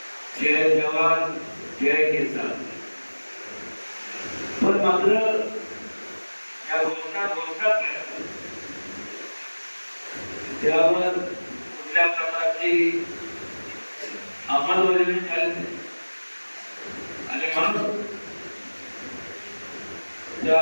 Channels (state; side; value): inverted; both; correlation -1.00